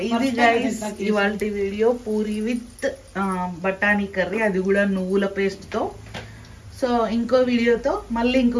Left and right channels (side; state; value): both; identical; correlation 1.00